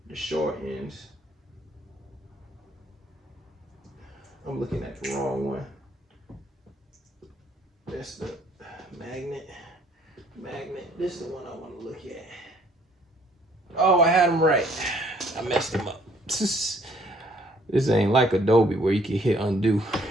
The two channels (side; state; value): both; normal; correlation 0.62